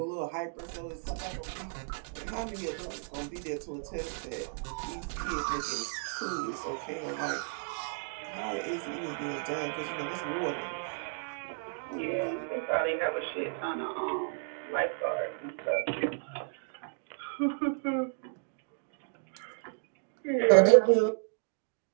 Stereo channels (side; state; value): left; silent; digital silence